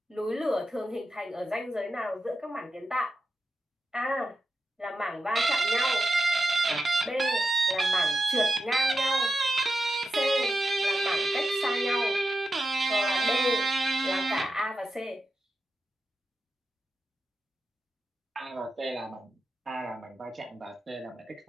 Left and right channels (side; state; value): both; normal; correlation 0.90